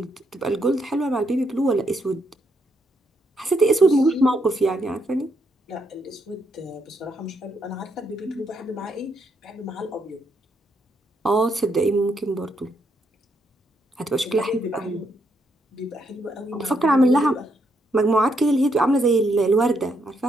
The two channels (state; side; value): normal; both; correlation 0.76